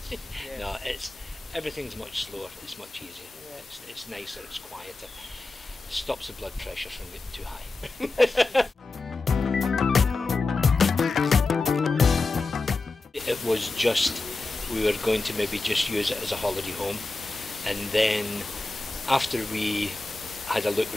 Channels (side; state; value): right; quieter; 3.3 dB